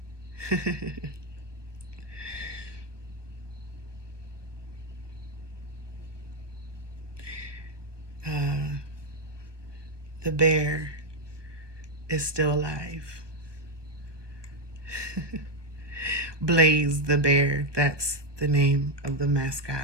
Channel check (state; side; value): late; left; 1.2 ms